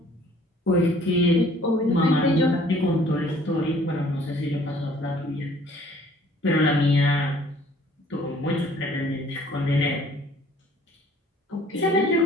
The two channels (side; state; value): both; normal; correlation 0.56